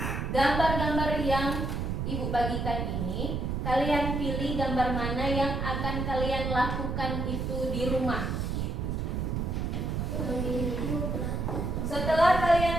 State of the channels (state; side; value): noise; right; rumble, 1 dB below the sound